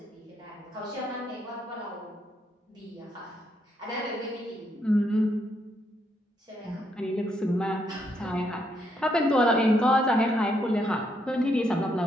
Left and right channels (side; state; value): both; normal; correlation 0.76